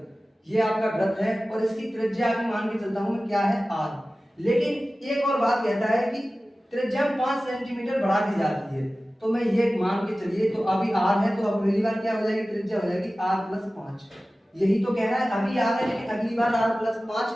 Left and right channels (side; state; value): both; normal; correlation 0.96